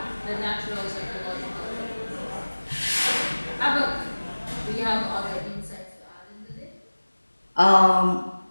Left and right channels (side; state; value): both; inverted; correlation -1.00